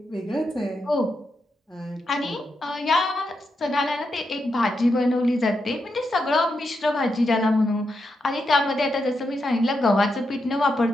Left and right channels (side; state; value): both; normal; correlation 0.84